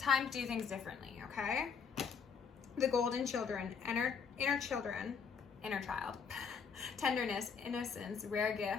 to do things differently, okay? The Golden Children, inner child. Tenderness, innocence, rare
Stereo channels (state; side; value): quieter; right; 6.1 dB